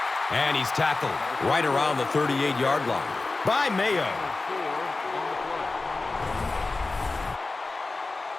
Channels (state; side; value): quieter; right; 3.5 dB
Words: And he's tackled right around the 38-yard line by Mayo.